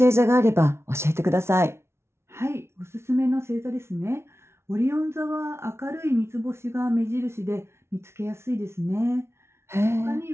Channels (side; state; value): left; late; 0.13 ms